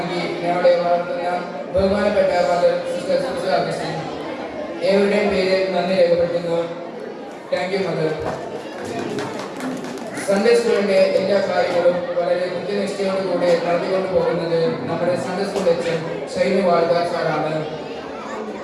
ഞങ്ങളെ വളർത്തുന്ന ബഹുമാനപ്പെട്ട ഫാദർ സിസ്റ്റർ സുജ അഗസ്റ്റിൻ ഏവരുടെയും പേര് നന്ദി രേഖപ്പെടുത്തുന്നു. Thank you mother. സൺഡേ സ്കൂളിന്റെ എല്ലാ കാര്യങ്ങളും വളരെ കൃത്യനിഷ്ഠയോടുകൂടി നടത്തിക്കൊണ്ടു പോകുന്നത് നമ്മുടെ സൺഡേ സ്കൂൾ അച്ഛൻ ഷൈനു വാഴ്ക സാറാണ്.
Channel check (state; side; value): identical; both; correlation 1.00